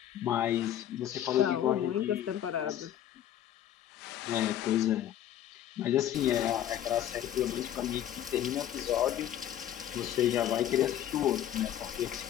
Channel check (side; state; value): right; quieter; 11.3 dB